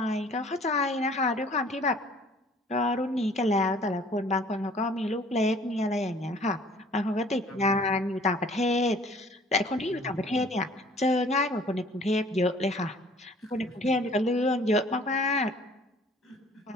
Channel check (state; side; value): normal; both; correlation 0.53